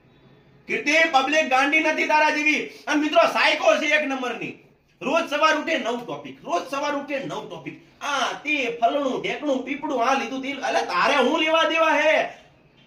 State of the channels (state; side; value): identical; both; correlation 1.00